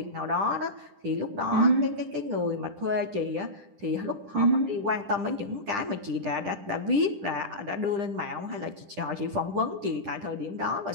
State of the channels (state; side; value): late; left; 10 ms